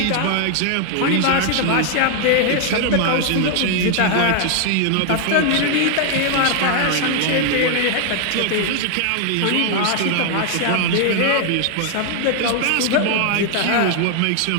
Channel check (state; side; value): different; both; correlation 0.00